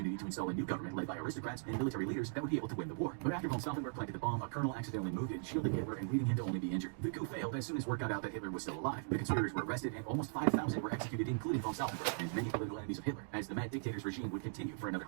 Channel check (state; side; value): silent; left; digital silence